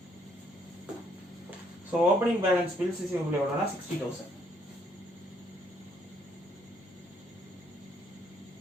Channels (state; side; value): normal; both; correlation 0.69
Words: So opening balance bills receivable எவ்வளோனா 60,000.